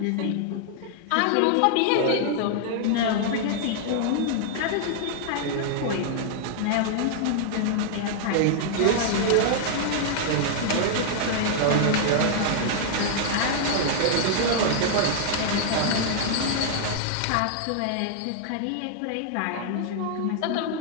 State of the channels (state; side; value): different; both; correlation -0.01